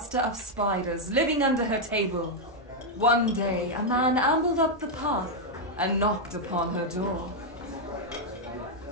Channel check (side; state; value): both; normal; correlation -0.01